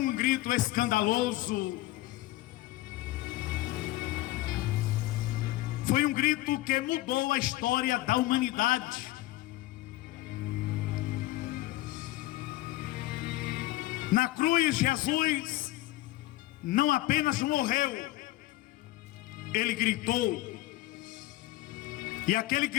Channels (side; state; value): right; quieter; 17.6 dB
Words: grito escandaloso, foi um grito que mudou a história da humanidade. Na cruz, Jesus não apenas morreu, ele gritou, e aquele